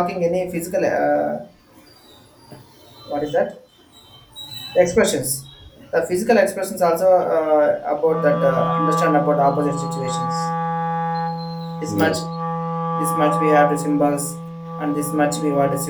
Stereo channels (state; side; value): identical; both; correlation 1.00